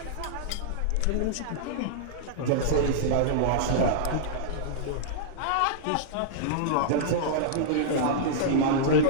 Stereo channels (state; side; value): different; both; correlation -0.02